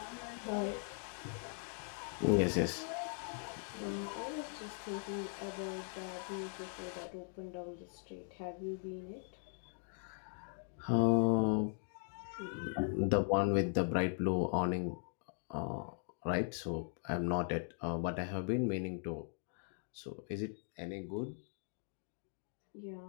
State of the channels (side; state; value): right; silent; 51 dB below the other